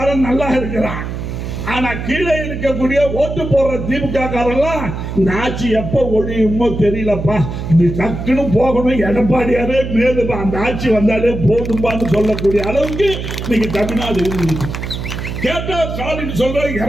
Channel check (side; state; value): right; noise; hum, 6 dB below the sound